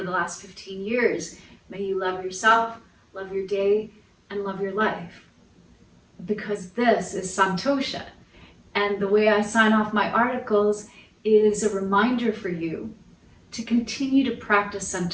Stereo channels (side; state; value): both; identical; correlation 1.00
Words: last 15 years. May you love yourself, love your day, and love your life. Because this is Santosha. And the way I sign off my articles is a reminder for you to continue to practice